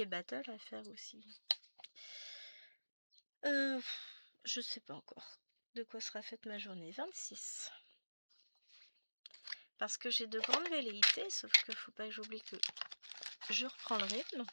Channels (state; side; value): inverted; both; correlation -1.00